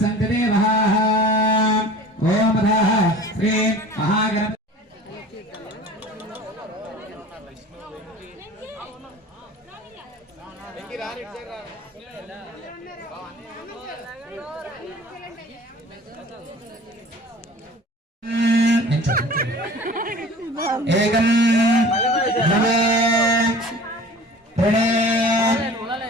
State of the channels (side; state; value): both; normal; correlation 0.43